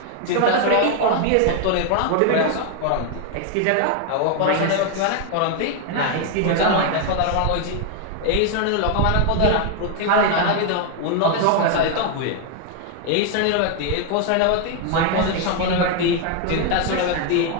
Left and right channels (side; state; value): both; different; correlation 0.00